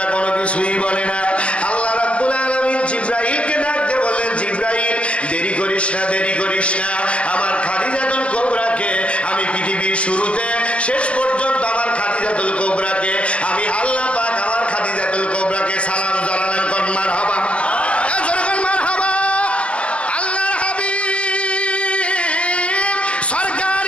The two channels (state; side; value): late; right; 0.061 ms